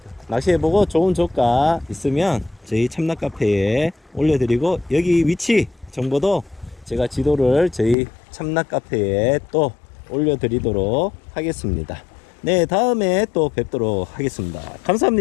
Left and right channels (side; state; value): right; drops out; at 8.0 s